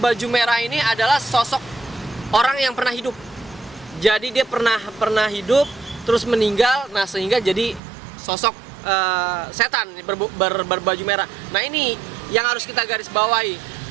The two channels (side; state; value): left; drops out; at 7.8 s